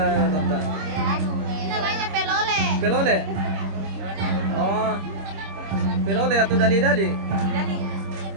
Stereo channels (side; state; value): left; late; 26 ms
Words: tante? Ini namanya pelole. Pelole? Oh, pelole atau dali-dali? Dali.